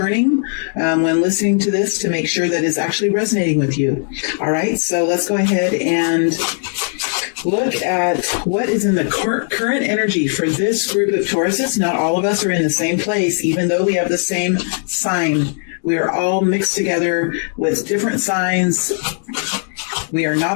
when listening to this to make sure that it's actually resonating with you. All right, so let's go ahead and look at what is in the current energy for this group of Tauruses. Not all of us are in the same place, even though we have the same sign. We are all mixed together with different signs. We are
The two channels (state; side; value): silent; right; 59 dB below the other